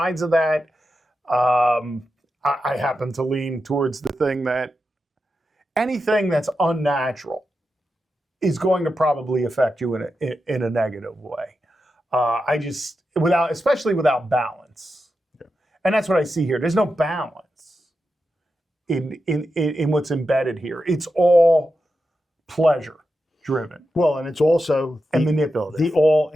of that. I happen to lean towards the thing that anything that's unnatural is going to probably affect you in a negative way. Especially without balance, and that's what I see here. There's no balance in what's embedded here. It's all pleasure driven. Well, and it's also manipulative. The all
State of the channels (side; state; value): both; normal; correlation 0.89